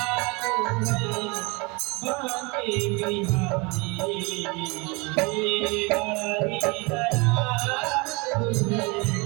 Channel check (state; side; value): quieter; left; 27.9 dB